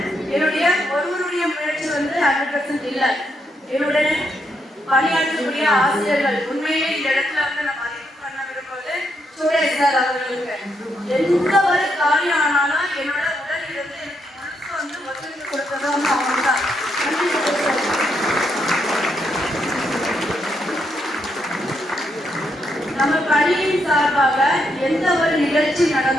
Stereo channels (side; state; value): both; normal; correlation 0.78